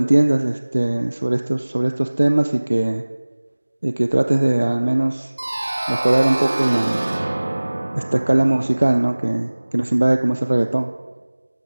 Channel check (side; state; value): both; inverted; correlation -1.00